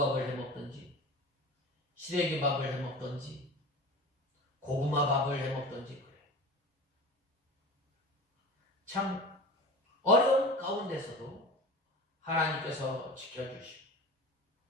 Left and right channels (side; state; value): both; normal; correlation 0.34